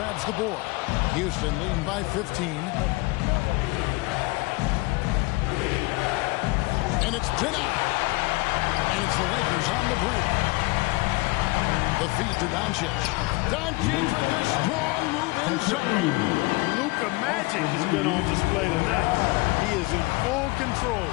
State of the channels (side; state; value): right; quieter; 23.8 dB